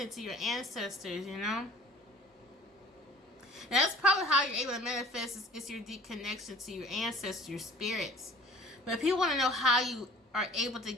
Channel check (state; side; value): normal; both; correlation 0.47